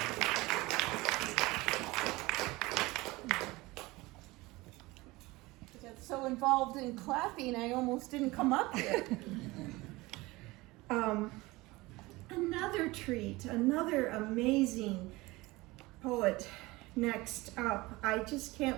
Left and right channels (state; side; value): quieter; left; 21.4 dB